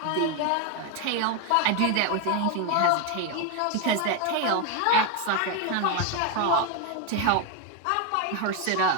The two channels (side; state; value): both; different; correlation 0.01